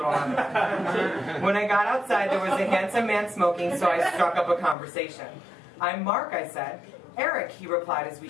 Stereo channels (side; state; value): right; drops out; at 4.8 s